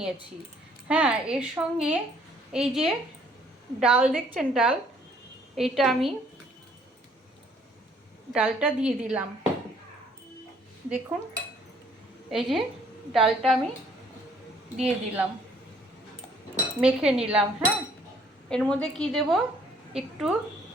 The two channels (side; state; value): both; normal; correlation 0.62